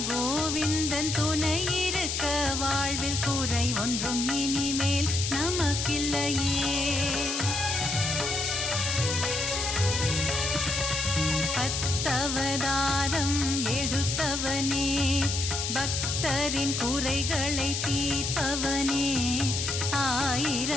கோவிந்தன் துணை இருக்க வாழ்வில் குறை ஒன்றும் இனிமேல் நமக்கில்லையே. பத்தவதாரம் எடுத்தவனே பக்தரின் குறைகளை தீர்ப்பவனே.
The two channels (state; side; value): noise; left; hiss, 1 dB below the sound